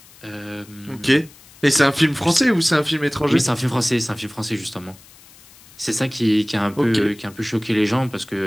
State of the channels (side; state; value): left; noise; hiss, 24 dB below the sound